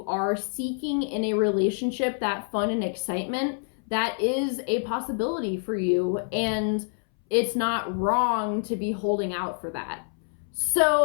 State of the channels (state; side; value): silent; right; 60 dB below the other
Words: are seeking in a relationship, that fun and excitement, that is a possibility for you, and it's not wrong to be holding out for that.